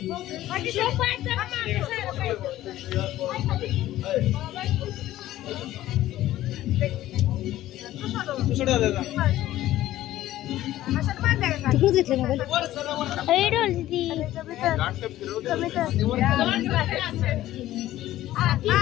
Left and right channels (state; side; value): quieter; right; 14.5 dB